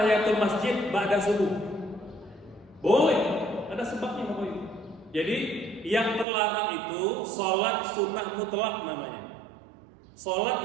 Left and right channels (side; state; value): left; drops out; at 6.2 s